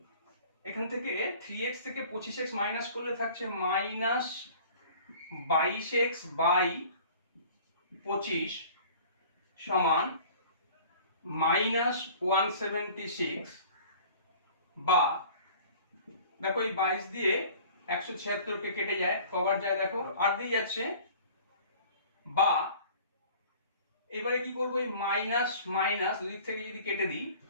এখান থেকে 3x থেকে 25x মাইনাস করলে থাকছে মাইনাস 22x বাই 25 সমান মাইনাস 176, বা দেখো এই 22 দিয়ে 176 কে কেটে যায়, কবার যায় দেখো 8 দিয়ে যাচ্ছে, বা এবারে কি করব, এই মাইনাস মাইনাস দুই দিক থেকে যদি কেটে দিই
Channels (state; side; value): inverted; both; correlation -0.47